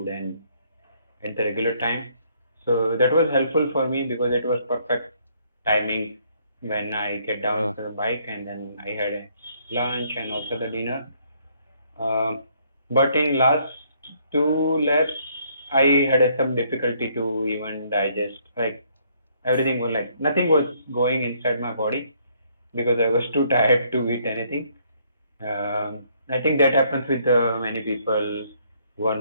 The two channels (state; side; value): inverted; both; correlation -0.67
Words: and at the regular time. So that was helpful for me because it was perfect timing when I get down Uh, to the bike and then I had a lunch and also the dinner. Um, but in last two laps, I had some difficulty to even digest. Like everything was like nothing was going inside my body because I was too tired to eat anything. I think that happens with many people who are